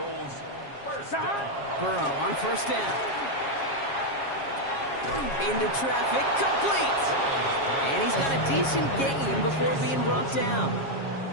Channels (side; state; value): right; late; 7.3 ms